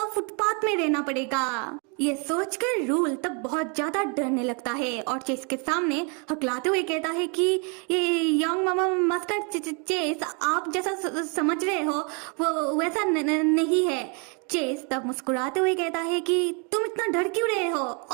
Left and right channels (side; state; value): left; quieter; 35.0 dB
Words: फुटपाथ में रहना पड़ेगा। ये सोचकर रूल तब बहुत ज्यादा डरने लगता है और चेस के सामने हकलाते हुए कहता है कि ये यंग मामा मास्टर चेस आप जैसा समझ रहे हो वो वैसा नहीं है। चेस तब मुस्कुराते हुए कहता है कि तुम इतना डर क्यों रहे हो